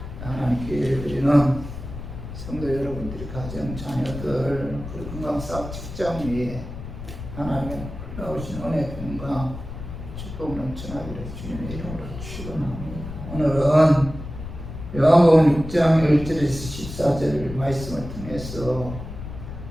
하나님께 예배드리는 성도 여러분들이 가정, 자녀들, 그리고 건강 사업 직장 위에 하나님의 놀라우신 은혜, 평강, 축복 넘쳐나기를 주님의 이름으로 축원합니다. 오늘은 요한복음 6장 1절에서 14절 말씀을 통해서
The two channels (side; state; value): left; noise; rumble, 10 dB below the sound